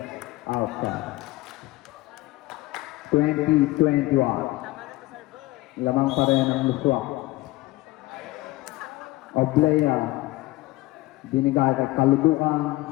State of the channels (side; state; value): right; quieter; 19.4 dB